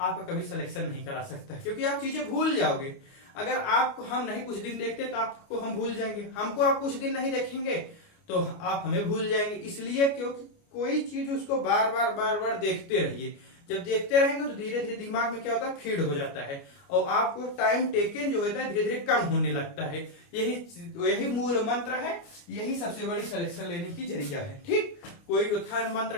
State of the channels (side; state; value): right; late; 29 ms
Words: कभी सिलेक्शन नहीं करा सकता, क्योंकि आप चीजें भूल जाओगे। अगर आपको हम नहीं कुछ दिन देखते तो आपको हम भूल जाएंगे, हमको आप कुछ दिन नहीं देखेंगे तो आप हमें भूल जाएंगे। इसलिए क्योंकि कोई चीज उसको बार बार देखते रहिए, जब देखते रहेंगे तो धीरे धीरे दिमाग में क्या होता है, फीड हो जाता है, और आपको टाइम टेकन जो होता है धीरे धीरे कम होने लगता है। यही मूल मंत्र है, यही सबसे बड़ी सिलेक्शन लेने की जरिया है। ठीक, कोई उत्थान